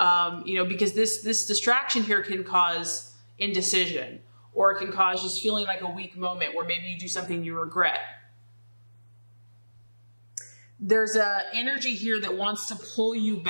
you know, because this distraction here can cause indecision, or it can cause just feeling like a weak moment where maybe you do something you regret. There's an energy here that wants to pull you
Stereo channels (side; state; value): both; inverted; correlation -1.00